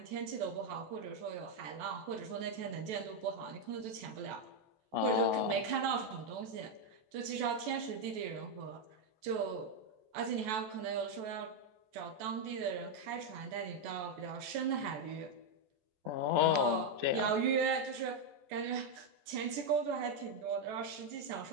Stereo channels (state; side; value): late; left; 14 ms